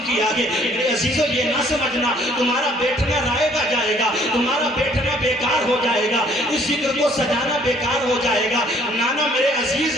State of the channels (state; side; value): normal; both; correlation 0.60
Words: کیا ہے۔ میرے عزیزو یہ نہ سمجھنا تمہارا بیٹھنا رائے گا جائے گا، تمہارا بیٹھنا بیکار ہو جائے گا، اس ذکر کو سجانا بیکار ہو جائے گا۔ نانا میرے عزیز،